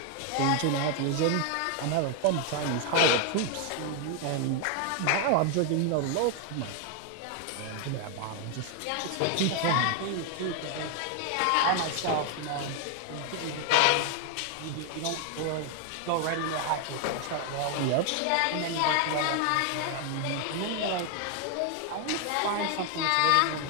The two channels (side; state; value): both; different; correlation 0.00